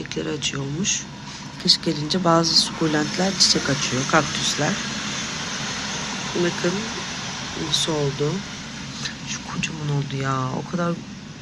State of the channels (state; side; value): identical; both; correlation 1.00